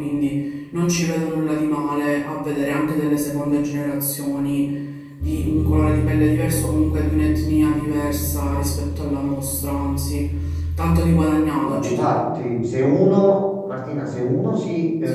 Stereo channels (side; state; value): both; identical; correlation 1.00